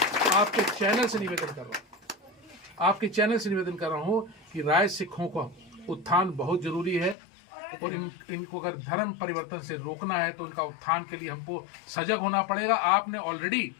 आपके चैनल से निवेदन कर रहा हूँ कि राय सिखों का उत्थान बहुत जरूरी है, और इनको अगर धर्म परिवर्तन से रोकना है तो इनका उत्थान के लिए हमको सजग होना पड़ेगा। आपने ऑलरेडी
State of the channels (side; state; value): right; drops out; at 7.2 s